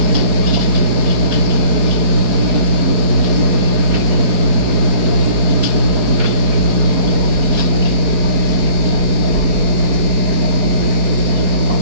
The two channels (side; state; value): left; late; 4.7 ms